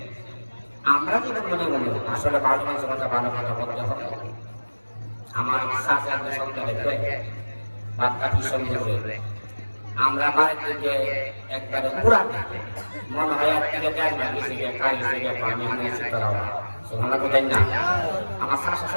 আমরা যদি মনে মনে আসলে ভালো মানুষের কথা ভালো কথা বলতে হবে। আমার চাচাদের সঙ্গে দেখবে বাচ্চাটির সঙ্গে আমরা বাড়িতে যে একবারে পুরা মনে হয় এক থেকে দেড় মাস গেছে গিয়ে খাই গেছে গিয়ে পানি আনিয়েছে তোরা সুবহানাল্লাহ বলেন না। আমার চাচা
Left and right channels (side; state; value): both; inverted; correlation -1.00